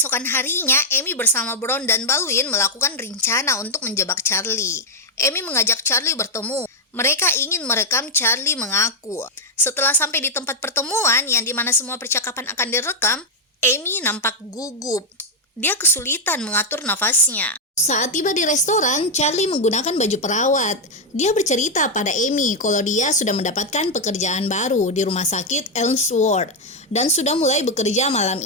harinya, Amy bersama Bron dan Baldwin melakukan rencana untuk menjebak Charlie. Amy mengajak Charlie bertemu. Mereka ingin merekam Charlie mengaku. Setelah sampai di tempat pertemuan yang dimana semua percakapan akan direkam, Amy nampak gugup. Dia kesulitan mengatur nafasnya. Saat tiba di restoran, Charlie menggunakan baju perawat. Dia bercerita pada Amy kalau dia sudah mendapatkan pekerjaan baru di rumah sakit Elmsworth dan sudah mulai bekerja malam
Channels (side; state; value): both; normal; correlation 0.01